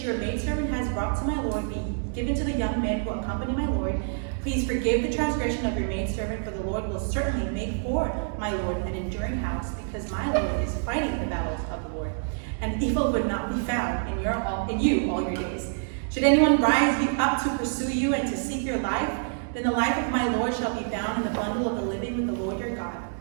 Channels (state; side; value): silent; left; digital silence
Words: your maidservant has brought to my lord be given to the young men who accompany my lord, Please forgive the transgression of your maidservant, for the Lord will certainly make for my Lord an enduring house, because my Lord is fighting the battles of the Lord, and evil would not be found in you all your days. Should anyone rise you up to pursue you and to seek your life, then the life of my Lord shall be found in the bundle of the living with the Lord your God.